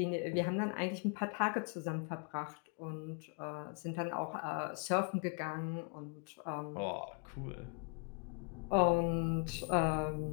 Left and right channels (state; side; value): quieter; right; 38.5 dB